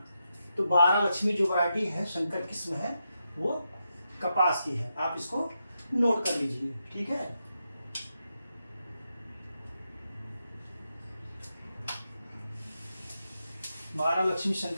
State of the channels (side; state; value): both; inverted; correlation -0.86